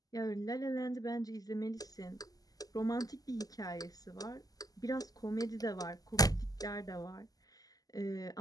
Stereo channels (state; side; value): late; right; 0.17 ms